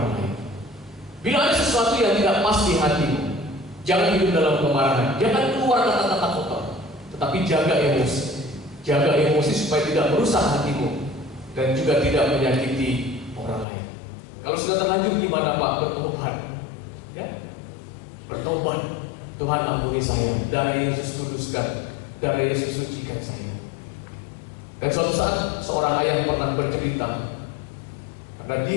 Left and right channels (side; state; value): right; drops out; at 13.7 s